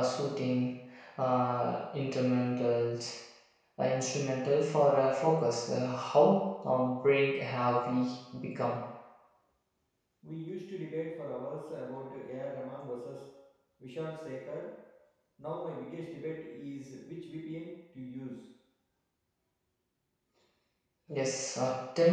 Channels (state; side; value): identical; both; correlation 1.00